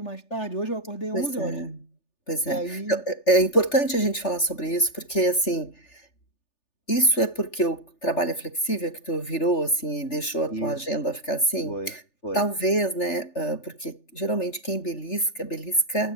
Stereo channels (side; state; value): right; late; 3.4 ms